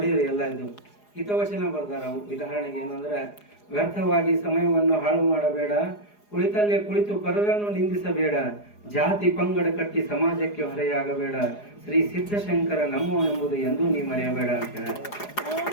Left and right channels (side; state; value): right; late; 4.8 ms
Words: ಎಲ್ಲ, ಇದು ಹಿತವಚನ ಬರ್ದಾರ. ಅವು ಉದಾಹರಣೆಗೆ ಏನಂದ್ರೆ, ವ್ಯರ್ಥವಾಗಿ ಸಮಯವನ್ನು ಹಾಳು ಮಾಡಬೇಡ, ಕುಳಿತಲ್ಲೇ ಕುಳಿತು ಪರರನ್ನು ನಿಂದಿಸಬೇಡ, ಜಾತಿ ಪಂಗಡ ಕಟ್ಟಿ ಸಮಾಜಕ್ಕೆ ಹೊರೆಯಾಗಬೇಡ, ಶ್ರೀ ಸಿದ್ಧಶಂಕರ ನಮ್ಮವನೆಂಬುದು ಎಂದೂ ನೀ ಮರೆಯಬೇಡ ಅಂತ.